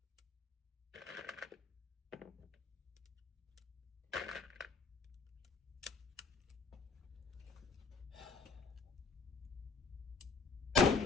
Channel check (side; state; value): right; quieter; 4.3 dB